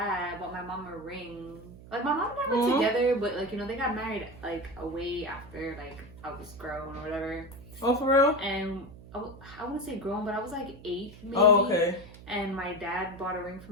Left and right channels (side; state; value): right; noise; hum, 18 dB below the sound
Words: bought my mom a ring. Like my mom and I were together, but like they got married like way after like I was grown or whatever. Oh, for real? And I wouldn't say grown, but I was like 8 maybe. Oh, okay. And my dad bought a ring for